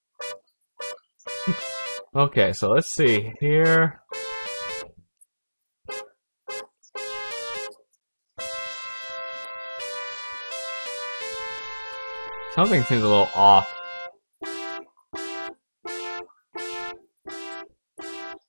Okay, so let's see here. Something seems a little off.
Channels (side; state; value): both; inverted; correlation -1.00